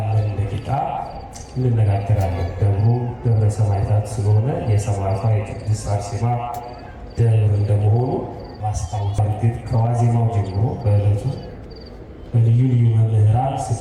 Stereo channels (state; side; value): identical; both; correlation 1.00